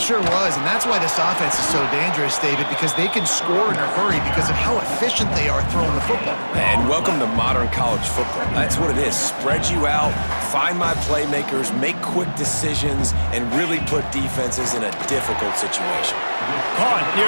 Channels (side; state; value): both; inverted; correlation -1.00